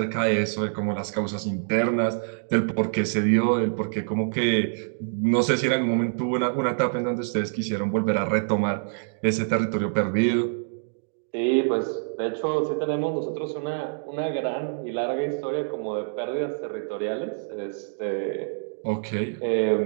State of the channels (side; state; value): left; silent; digital silence